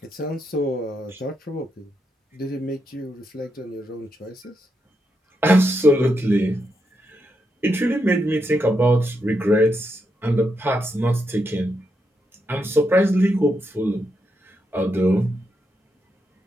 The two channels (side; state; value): both; normal; correlation 0.83